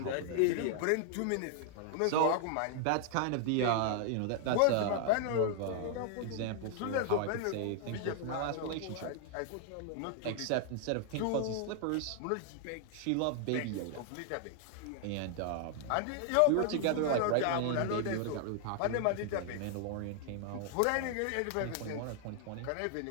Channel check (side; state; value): both; different; correlation 0.00